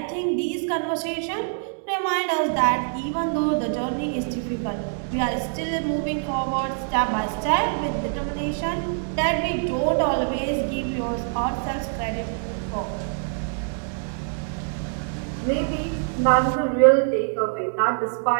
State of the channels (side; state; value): left; silent; 62 dB below the other